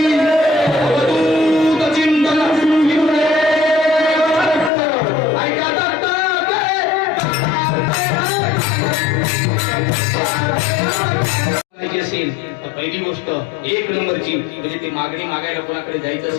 अवधूत चिंतन ऐका दत्तात्रय असेल तर पहिली गोष्ट 1 नंबरची म्हणजे ते मागणी मागायला कोणाकडे जायचं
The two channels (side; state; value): right; drops out; at 4.7 s